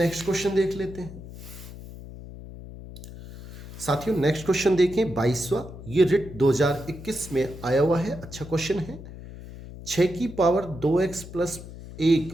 क्वेश्चन देख लेते हैं साथियों। नेक्स्ट क्वेश्चन देखें 22वां, ये रिट 2021 में आया हुआ है। अच्छा क्वेश्चन है। 6 की पावर 2x प्लस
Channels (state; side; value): noise; left; hum, 14 dB below the sound